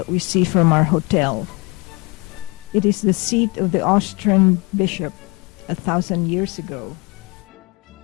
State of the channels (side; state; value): right; quieter; 27.7 dB